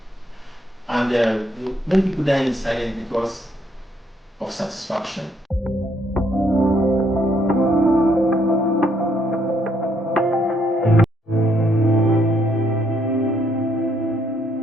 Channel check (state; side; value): normal; both; correlation 0.71